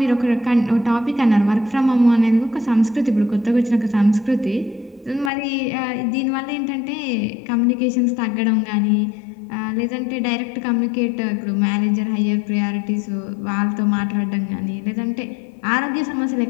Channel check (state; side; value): drops out; right; at 5.3 s